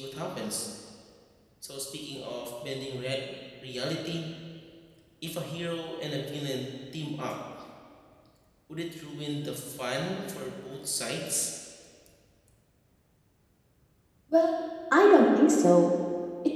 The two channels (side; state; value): both; identical; correlation 1.00